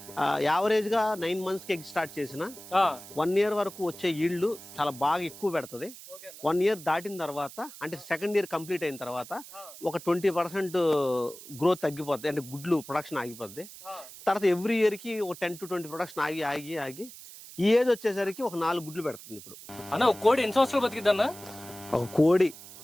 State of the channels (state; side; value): noise; right; hiss, 16 dB below the sound